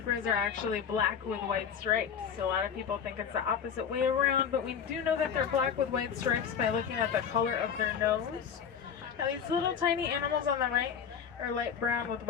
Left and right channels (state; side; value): quieter; right; 7.5 dB